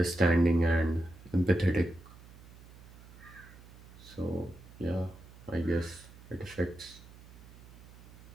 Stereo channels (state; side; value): noise; right; hum, 20 dB below the sound